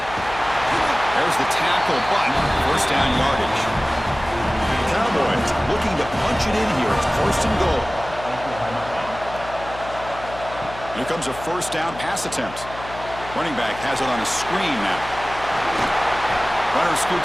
There's the tackle, but first down yardage. Cowboys looking to punch it in here. It's first and goal. Here comes a first down pass attempt. Running back has it on a screen now. Runner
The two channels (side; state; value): left; noise; hum, 14 dB below the sound